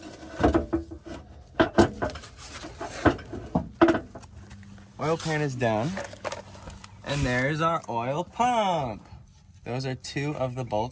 Oil pan is down, and there's our oil pump. Those are two of the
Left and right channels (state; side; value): identical; both; correlation 1.00